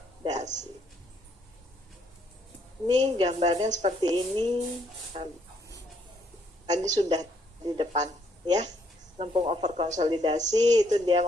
Ini gambarnya seperti ini. Tadi sudah di depan, ya, lempung over konsolidasi itu dia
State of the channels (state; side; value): normal; both; correlation 0.70